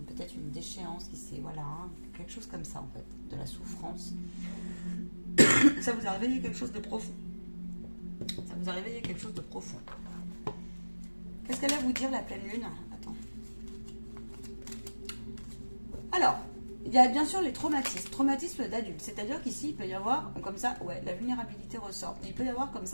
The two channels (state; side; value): inverted; both; correlation -1.00